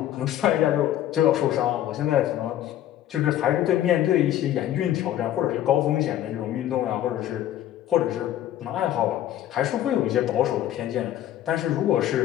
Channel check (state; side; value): quieter; right; 12.2 dB